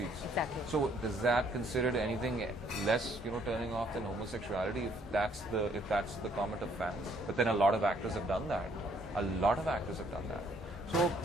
Exactly. So does that considered anything less turning off than homosexuality if that's the comment of fans? But then a lot of actors have done that. So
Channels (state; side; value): normal; both; correlation 0.66